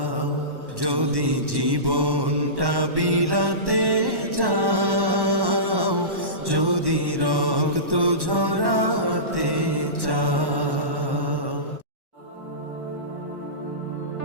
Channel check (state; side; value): late; left; 1.1 ms